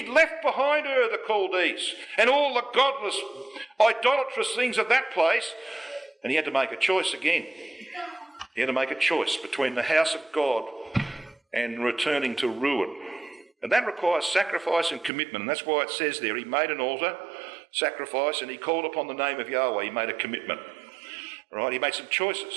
left behind her the Chaldees and all the godless, idolatrous things of that place, and he had to make a choice again. He had to make a choice between the house of God and returning to ruin. And that requires sacrifice and commitment, and that's why it says there, he made an altar, sacrifice, and he called upon the name of Yahweh. He made a commitment. Right? He made some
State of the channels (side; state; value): left; drops out; at 15.1 s